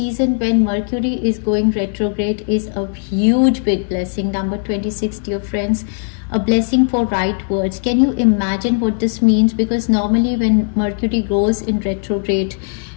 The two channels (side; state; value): right; silent; digital silence